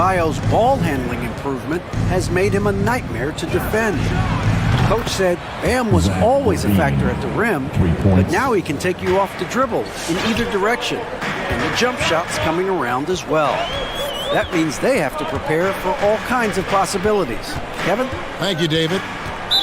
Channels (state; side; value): identical; both; correlation 1.00